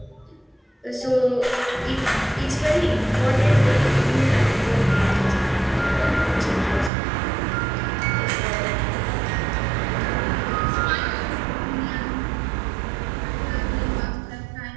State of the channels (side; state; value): left; drops out; at 6.9 s